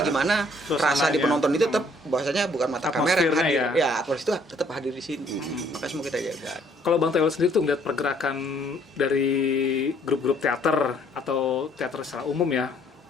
gimana Suasananya. rasa di penonton itu tetap bahwasanya bukan mata kamera yang Atmosfernya hadir. ya. Atmosfer itu tetap hadir di sini. Maka semua kita jaga. Kalau Bang Tewel sendiri tuh ngeliat pergerakan dari grup-grup teater atau teater secara umum ya,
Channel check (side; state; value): both; normal; correlation 0.63